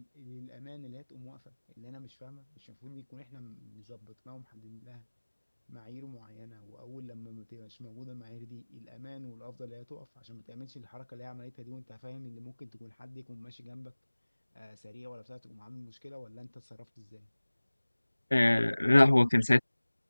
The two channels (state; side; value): inverted; both; correlation -1.00